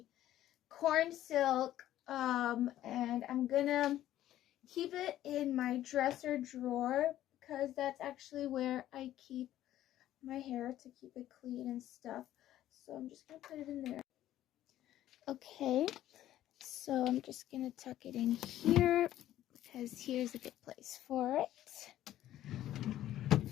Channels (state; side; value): quieter; right; 13.1 dB